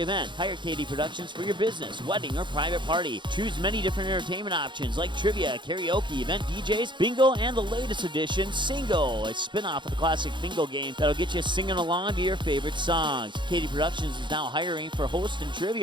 event. Hire KD Productions for your business, wedding, or private party. Choose many different entertainment options like trivia, karaoke, event DJs, bingo, and the latest edition, Singo, a spin-off of the classic bingo game that'll get you singing along to your favorite songs. KD Productions is now hiring for host and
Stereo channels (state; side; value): late; left; 0.23 ms